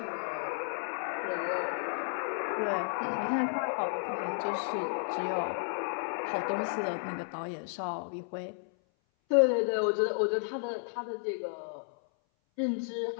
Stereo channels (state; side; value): silent; right; 56 dB below the other